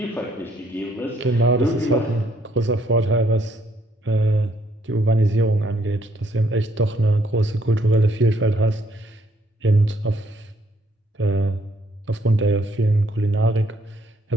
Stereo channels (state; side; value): normal; both; correlation 0.68